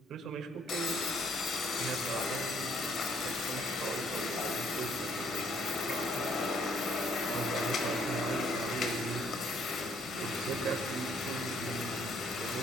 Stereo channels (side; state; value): both; normal; correlation 0.65